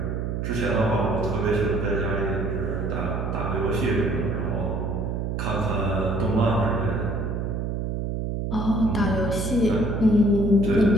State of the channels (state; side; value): noise; right; hum, 2 dB below the sound